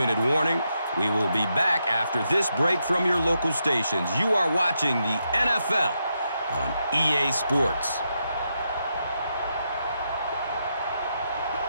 warning. We will be back after this break from your local stations. You are watching the NFL on EA Sports.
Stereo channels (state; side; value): inverted; both; correlation -0.83